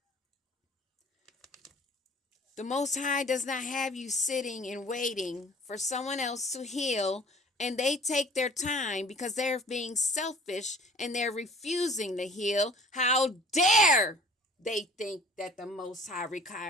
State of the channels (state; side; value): normal; both; correlation 0.50